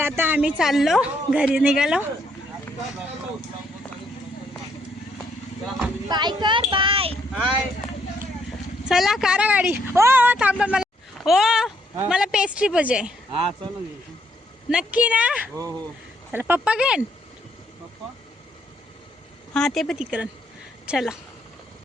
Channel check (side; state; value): both; normal; correlation 0.72